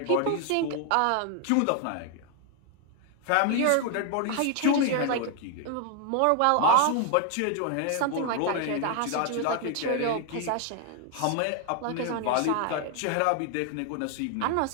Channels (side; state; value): both; different; correlation 0.00